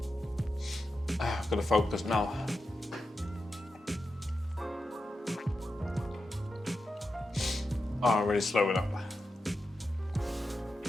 I've got to focus now. Oh, I'm really slowing up.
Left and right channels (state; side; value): normal; both; correlation 0.89